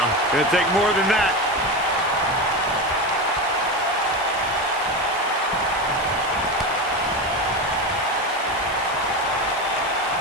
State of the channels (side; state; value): left; noise; hiss, 18 dB below the sound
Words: Going to take more than that.